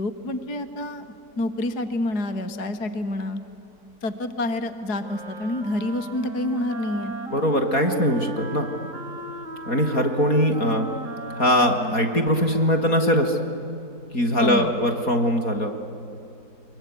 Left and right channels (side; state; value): right; late; 4.2 ms